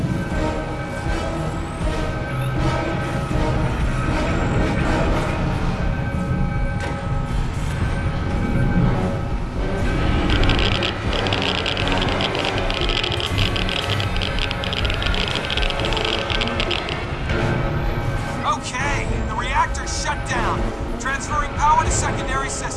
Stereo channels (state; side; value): identical; both; correlation 1.00